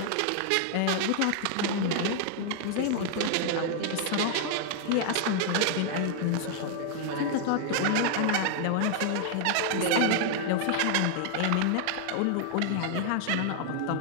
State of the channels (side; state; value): both; different; correlation 0.00